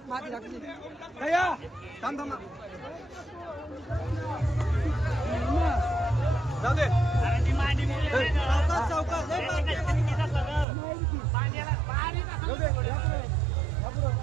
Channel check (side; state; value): left; drops out; at 10.7 s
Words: माती टाकली थांब थांब जाऊ दे